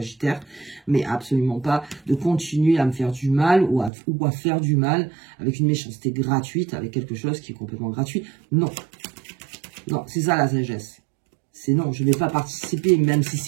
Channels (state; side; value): drops out; left; at 3.9 s